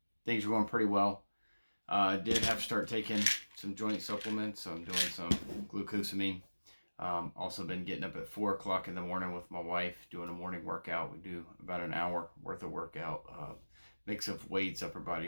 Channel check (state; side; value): inverted; both; correlation -1.00